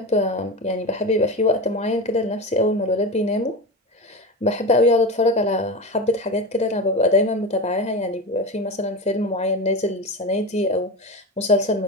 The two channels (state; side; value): normal; both; correlation 0.23